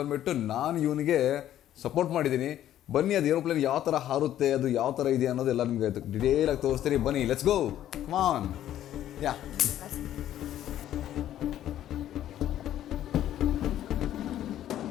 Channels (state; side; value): quieter; right; 12.0 dB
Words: ಬಂದುಬಿಟ್ಟು ನಾನು ಇವನಿಗೆ ಸಪೋರ್ಟ್ ಮಾಡಿದ್ದೀನಿ. ಬನ್ನಿ, ಅದು ಏರೋಪ್ಲೇನ್ ಯಾವ ಥರ ಹಾರುತ್ತೆ, ಅದು ಯಾವ ಥರ ಇದೆ ಅನ್ನೋದೆಲ್ಲ ನಿಮಗೆ ಡಿಟೇಲಾಗಿ ತೋರಿಸ್ತೀನಿ. ಬನ್ನಿ, let's go, come on. Yeah